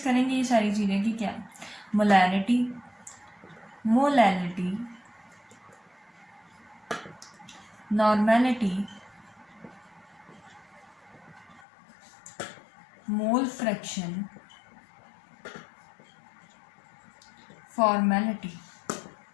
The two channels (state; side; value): drops out; right; at 11.6 s